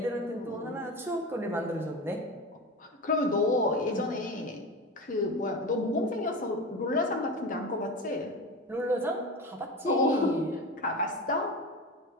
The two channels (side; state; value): both; normal; correlation 0.26